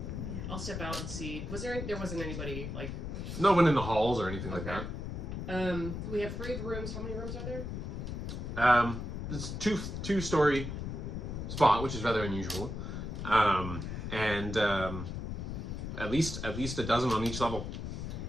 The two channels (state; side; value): noise; left; rumble, 5 dB below the sound